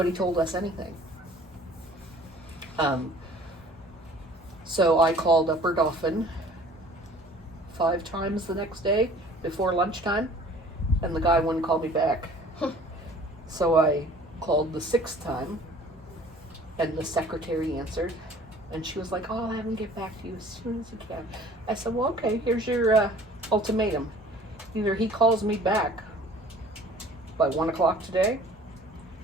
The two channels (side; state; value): both; normal; correlation 0.50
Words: told us anything. So I called Upper Dauphin 5 times the next day before lunchtime, and the guy wouldn't call me back. So I called the 6th time, and the secretary answered, and she was like, oh, I'll have him get back to you as soon as he can. I said, well, okay, here's your ultimatum. Either he calls me back by 1 o'clock today,